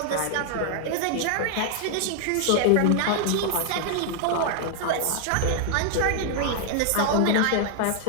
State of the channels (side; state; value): both; different; correlation 0.00